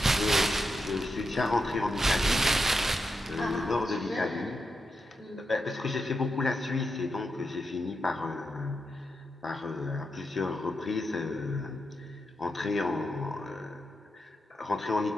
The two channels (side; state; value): both; normal; correlation 0.86